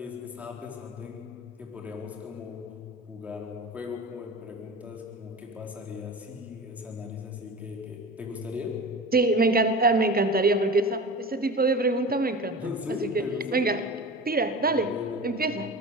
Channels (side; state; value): both; normal; correlation 0.33